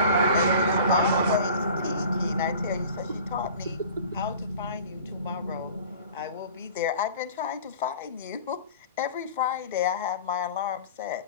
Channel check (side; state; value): both; inverted; correlation -0.43